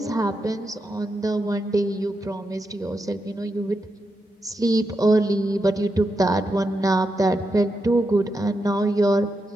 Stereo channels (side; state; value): both; normal; correlation 0.86